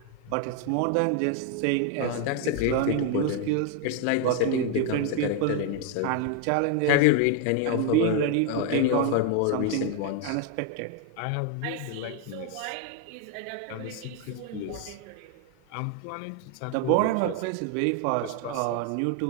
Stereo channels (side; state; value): both; different; correlation 0.01